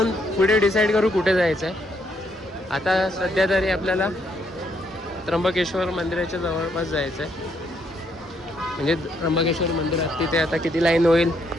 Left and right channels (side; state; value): both; normal; correlation 0.73